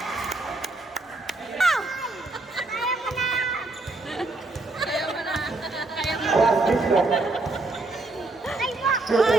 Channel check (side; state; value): left; quieter; 3.1 dB